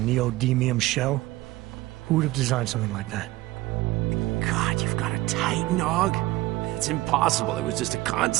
shell. Who would have designed something like that? God, you've got a Titan dog? It's impossible. It was just a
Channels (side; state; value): left; quieter; 18.3 dB